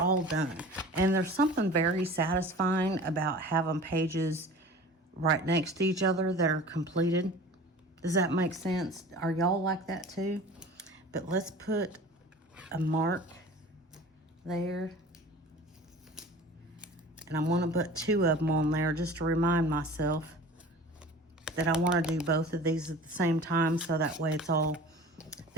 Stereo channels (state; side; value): normal; both; correlation 0.41